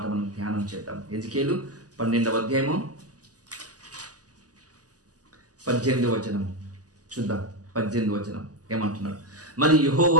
మనం ధ్యానం చేద్దాం. హెజ్కేలు 12వ అధ్యాయము 18వ వచనం చూద్దాం. 18వ వచనం ఏమంటున్నాడు? మరి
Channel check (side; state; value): left; late; 0.67 ms